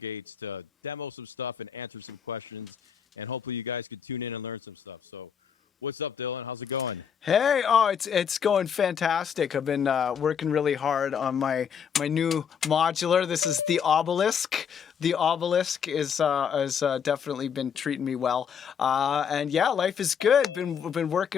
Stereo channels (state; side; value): quieter; right; 7.5 dB